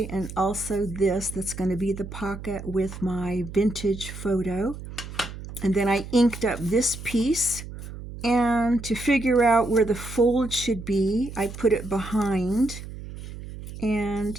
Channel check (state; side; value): noise; right; hum, 11 dB below the sound